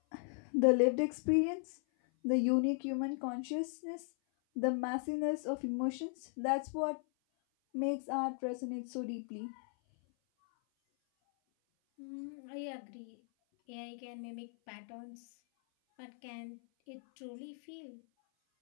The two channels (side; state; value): right; silent; 53 dB below the other